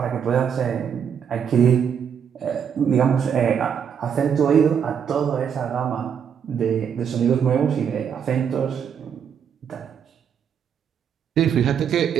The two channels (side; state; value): left; quieter; 7.8 dB